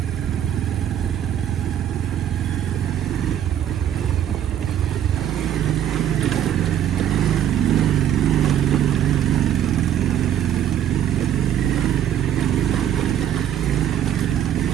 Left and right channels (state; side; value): quieter; left; 10.2 dB